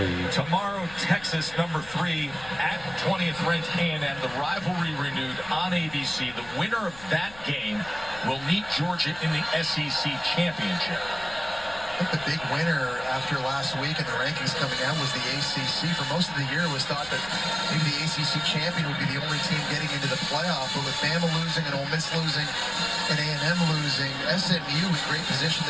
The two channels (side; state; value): left; noise; rumble, 19 dB below the sound